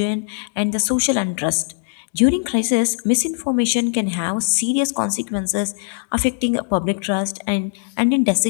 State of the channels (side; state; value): right; silent; digital silence